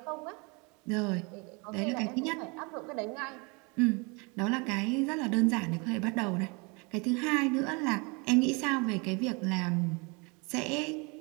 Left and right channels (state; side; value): quieter; left; 30.0 dB